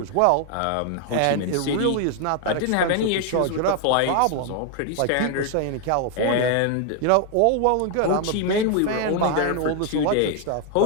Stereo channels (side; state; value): both; different; correlation 0.01